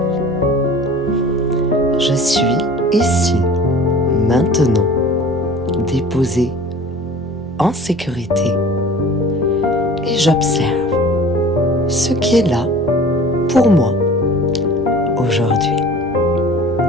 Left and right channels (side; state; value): both; normal; correlation 0.44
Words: Je suis ici, maintenant, déposé en sécurité et j'observe ce qui est là pour moi aujourd'hui.